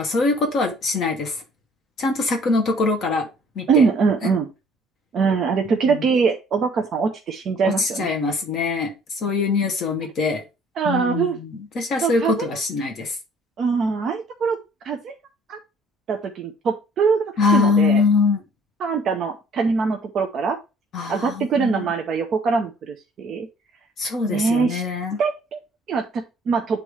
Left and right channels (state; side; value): normal; both; correlation 0.56